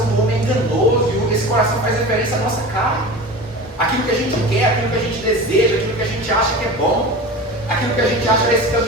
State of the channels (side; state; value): both; normal; correlation 0.32